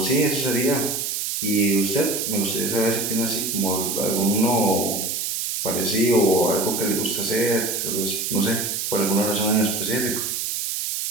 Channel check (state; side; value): noise; right; hiss, 2 dB below the sound